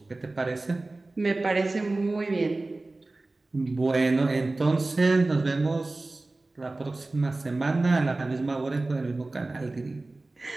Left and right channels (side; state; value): left; quieter; 3.1 dB